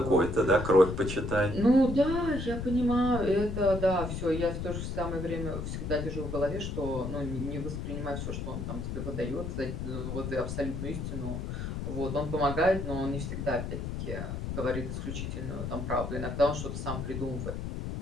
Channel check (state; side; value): noise; left; rumble, 4 dB below the sound